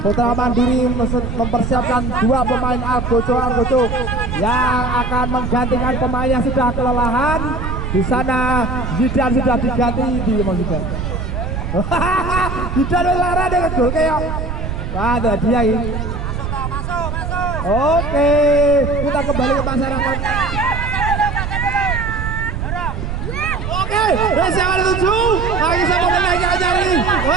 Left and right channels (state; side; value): noise; right; rumble, 4 dB below the sound